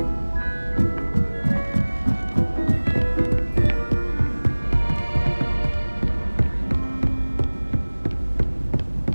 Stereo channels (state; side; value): inverted; both; correlation -1.00